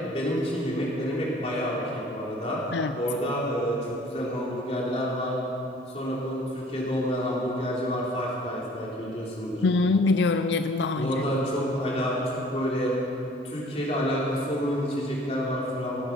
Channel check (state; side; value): normal; both; correlation 0.53